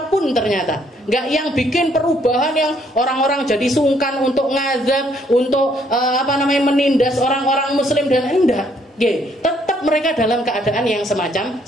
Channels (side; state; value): both; normal; correlation 0.68